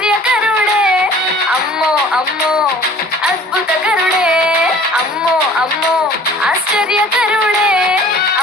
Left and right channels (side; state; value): both; normal; correlation 0.48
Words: అమ్మో అమ్మో అద్భుతకరుడే, అమ్మో అమ్మో ఆశ్చర్యకరుడే,